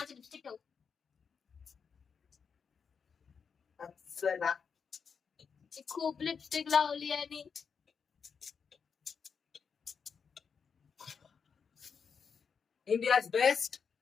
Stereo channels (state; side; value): quieter; right; 6.2 dB